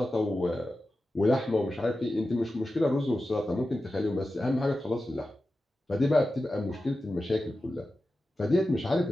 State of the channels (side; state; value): both; normal; correlation 0.93